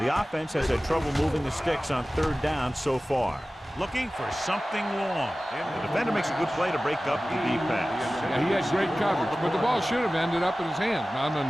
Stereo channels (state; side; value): normal; both; correlation 0.97